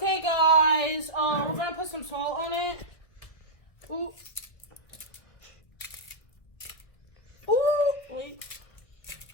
guys, we're gonna put some salt on it. Ooh. Ooh. Wait.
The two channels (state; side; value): late; right; 1.9 ms